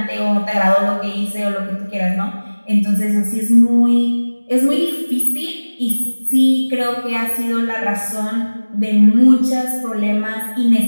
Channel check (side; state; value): both; inverted; correlation -1.00